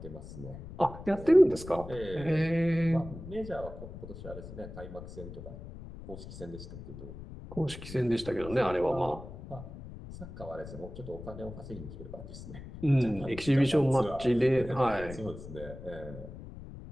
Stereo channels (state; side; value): noise; left; rumble, 13 dB below the sound